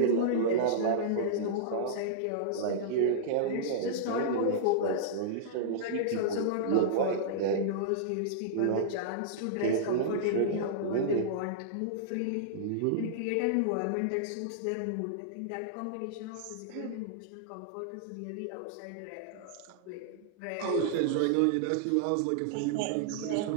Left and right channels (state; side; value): different; both; correlation -0.02